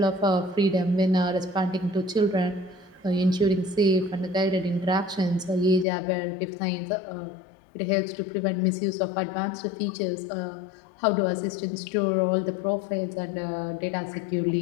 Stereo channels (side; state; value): right; drops out; at 5.9 s